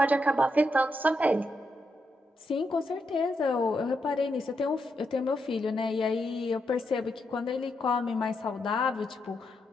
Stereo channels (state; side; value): normal; both; correlation 0.82